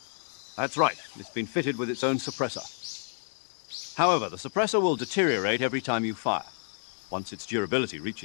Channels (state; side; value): silent; right; digital silence